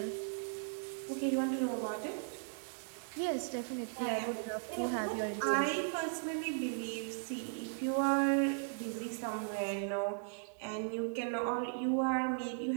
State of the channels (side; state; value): left; silent; digital silence